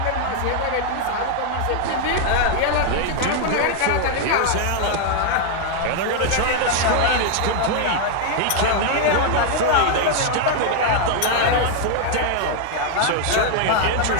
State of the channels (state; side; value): different; both; correlation 0.00